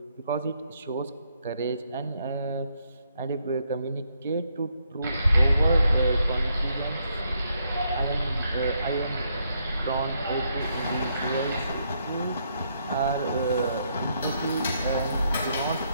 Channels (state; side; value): inverted; both; correlation -0.76